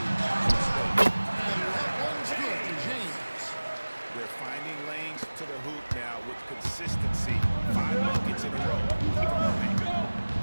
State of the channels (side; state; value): both; inverted; correlation -1.00